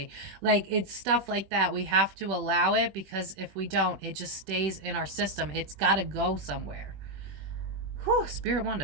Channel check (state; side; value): late; left; 21 ms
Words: Like, it's stuff like that. We have to allow it because if we don't, it just stays in our system. It's got to go somewhere. Whew, Spirit